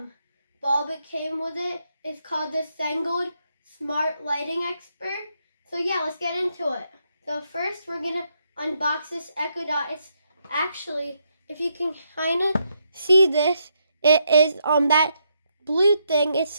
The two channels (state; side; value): inverted; both; correlation -0.78